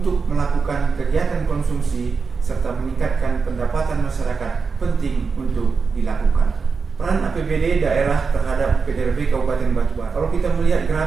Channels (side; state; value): left; quieter; 5.0 dB